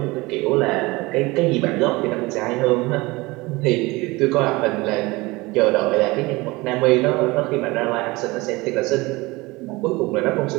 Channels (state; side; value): quieter; left; 22.5 dB